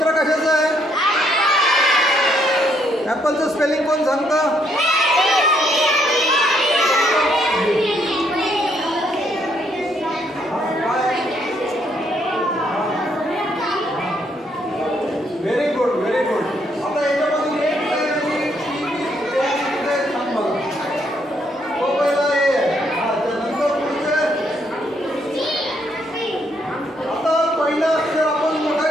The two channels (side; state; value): both; normal; correlation 0.72